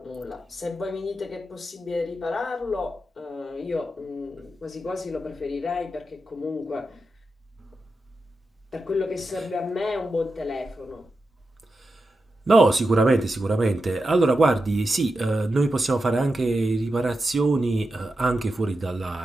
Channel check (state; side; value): normal; both; correlation 0.90